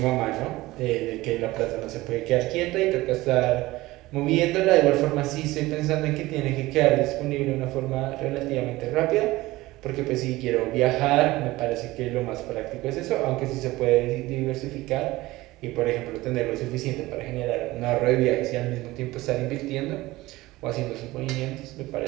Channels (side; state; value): left; quieter; 18.8 dB